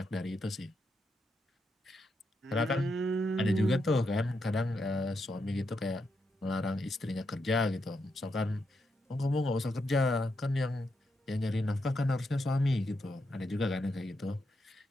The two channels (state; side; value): normal; both; correlation 0.83